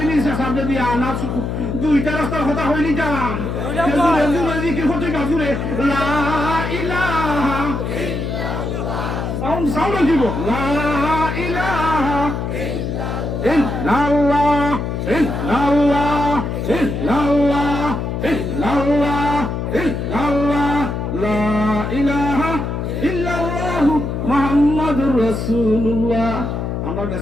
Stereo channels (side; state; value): left; noise; hum, 3 dB below the sound